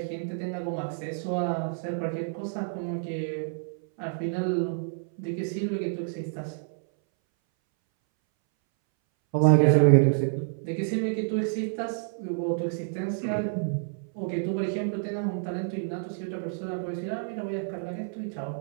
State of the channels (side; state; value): left; silent; 59 dB below the other